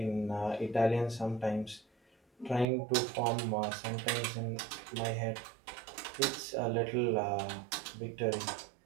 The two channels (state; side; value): drops out; left; at 2.7 s